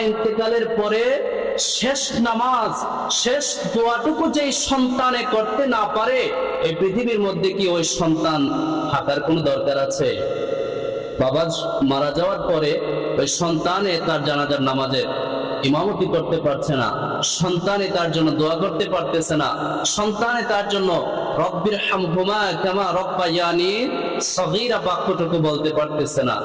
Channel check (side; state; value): both; identical; correlation 1.00